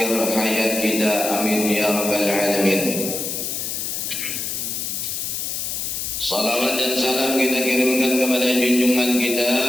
hayat kita. Amin ya rabbal alamin. Salawat dan salam kita kirimkan kepada junjungan kita,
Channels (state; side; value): noise; left; hiss, 3 dB below the sound